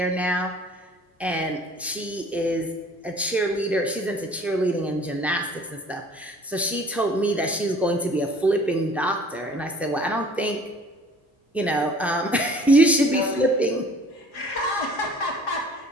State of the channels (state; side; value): normal; both; correlation 0.50